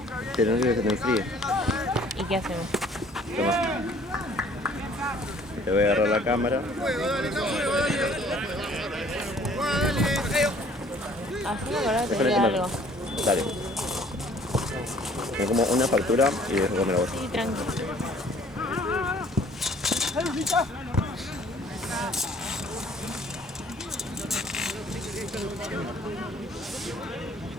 Pero no quiero que te enfríe. ¿Y qué hacemos? Toma. Te voy a agarrar la cámara. Así me acordaba que Déjale tenía comer. algo. Dale. Me como una factura y dejo comer a vos. Sí, tranquilo.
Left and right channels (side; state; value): both; normal; correlation 0.56